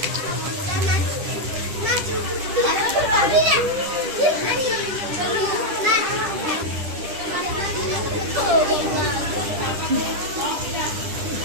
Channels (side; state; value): left; late; 10 ms